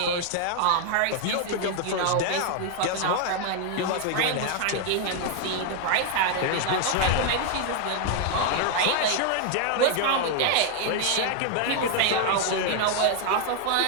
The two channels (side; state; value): both; different; correlation 0.00